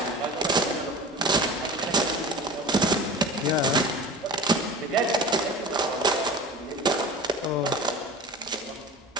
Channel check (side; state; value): both; normal; correlation 0.34